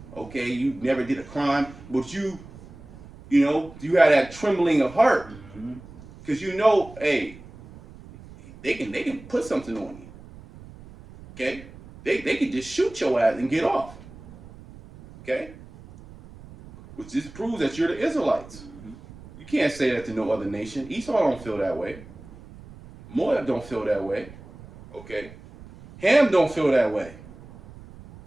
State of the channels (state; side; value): noise; right; rumble, 19 dB below the sound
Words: Okay, you never did a crime, but you know, you had that trembling of heart. Because you know, hey, they can put something on you. Okay? They can just shoot your ass and get off. Okay? Which just proves that you're the Israelites. You can't say that to no other nation. Esau don't feel that way. Moab don't feel that way. Okay? Ham don't feel that way.